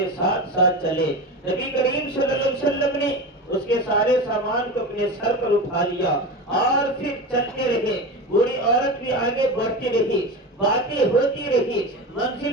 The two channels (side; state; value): both; normal; correlation 0.25